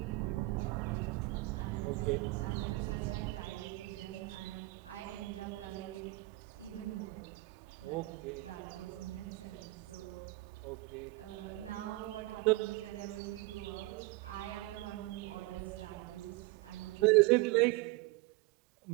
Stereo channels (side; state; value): left; quieter; 21.5 dB